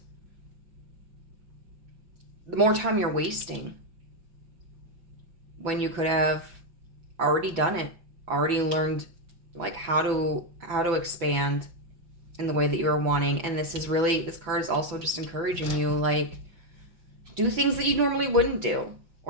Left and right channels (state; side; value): late; left; 6.0 ms